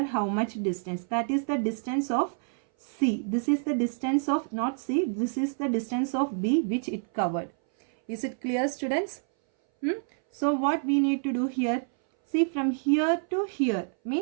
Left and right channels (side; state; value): left; silent; 59 dB below the other